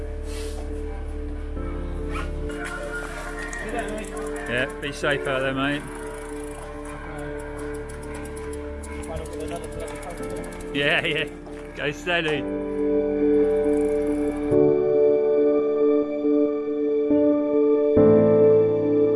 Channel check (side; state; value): both; identical; correlation 1.00